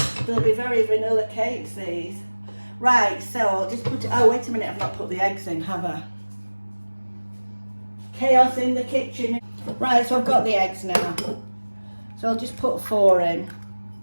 they'll be very vanilla cakes, these. Right, so I'll just put it, oh wait a minute, I've not put the eggs in, have I? Chaos in the kitchen. Right, so I've got the eggs now. So I'll just put 4 in.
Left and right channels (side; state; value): both; inverted; correlation -1.00